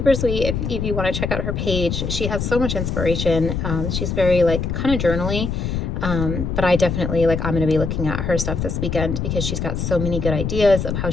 sweet. If you want to check out her page, she has so much inspiration. She's very like kind of journaly. But I definitely I'm going to be looking at her stuff this weekend because she's got so many good ideas of how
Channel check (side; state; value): left; noise; rumble, 2 dB below the sound